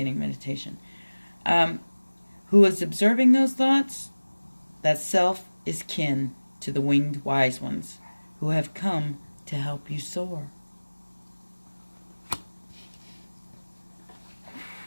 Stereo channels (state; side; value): inverted; both; correlation -1.00